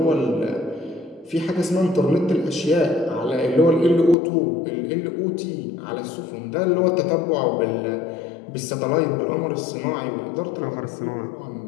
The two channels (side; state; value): right; drops out; at 4.2 s